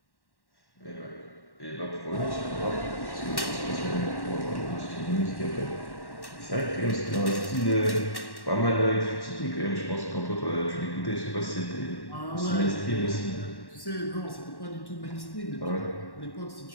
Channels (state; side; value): late; right; 1.1 ms